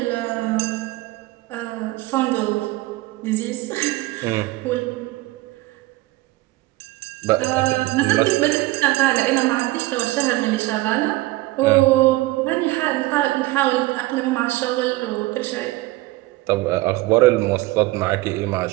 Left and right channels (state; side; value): quieter; left; 19.4 dB